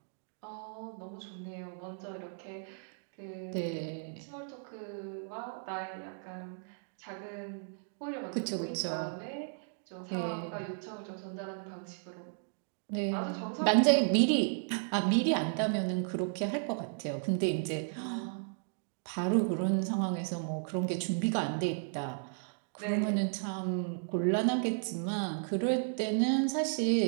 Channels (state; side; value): silent; left; digital silence